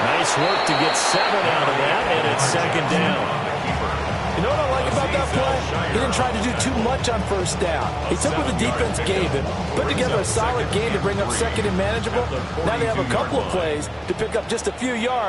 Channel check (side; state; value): both; identical; correlation 1.00